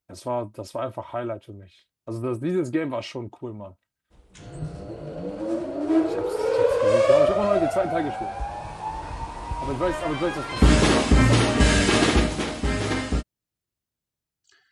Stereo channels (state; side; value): identical; both; correlation 1.00